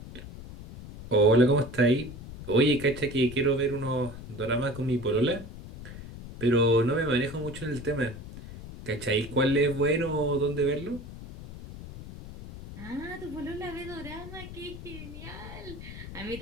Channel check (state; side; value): noise; left; rumble, 13 dB below the sound